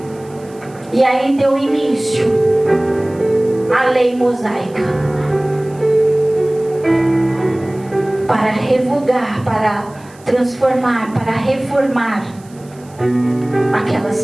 E aí deu início à lei mosaica, para revogar, para transformar, para reformar aquela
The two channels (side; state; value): right; noise; hiss, 27 dB below the sound